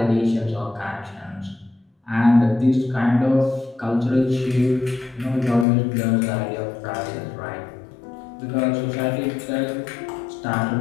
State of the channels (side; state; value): right; drops out; at 5.7 s